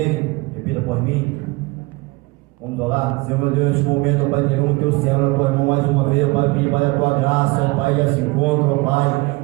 repita por mim. Vamos orar. Senhor meu Deus, neste momento, ó Pai, entregamos o teu céu na tua mão mais uma vez, ó Pai, pedir para a tua graça, ó Pai, desse encontro, ó Pai.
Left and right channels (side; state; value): left; quieter; 24.3 dB